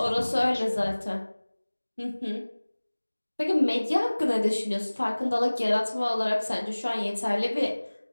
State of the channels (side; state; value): both; inverted; correlation -1.00